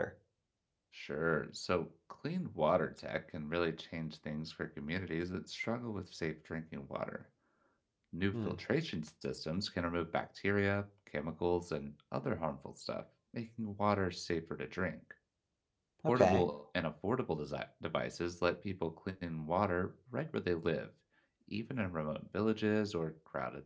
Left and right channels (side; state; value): both; identical; correlation 1.00